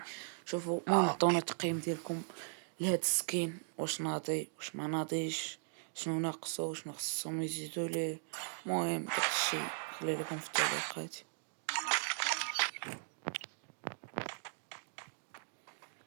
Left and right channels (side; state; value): left; silent; digital silence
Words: شوفوا المهم عطونا التقييم ديالكم لهاد السكين، واش ناضي واش ما ناضيش، شنو ناقصو شنو خصهم يزيدوا ليه. المهم داكشي خلي لكم في التعليقات.